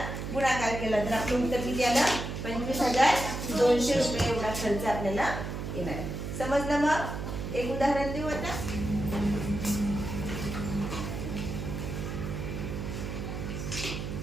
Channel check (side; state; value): right; noise; hum, 5 dB below the sound